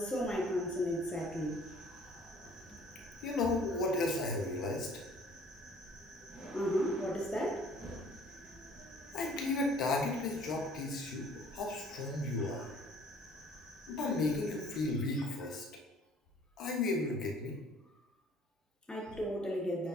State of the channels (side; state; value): both; normal; correlation 0.55